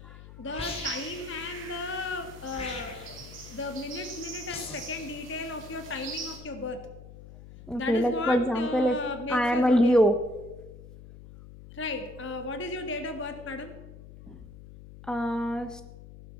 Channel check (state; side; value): noise; left; hum, 16 dB below the sound